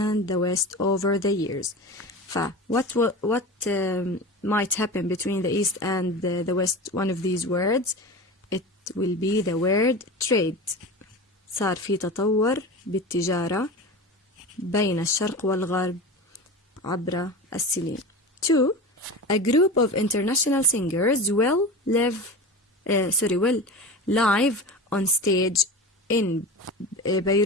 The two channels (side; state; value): both; normal; correlation 0.30